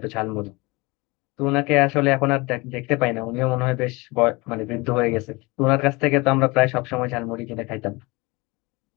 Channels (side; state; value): right; quieter; 24.5 dB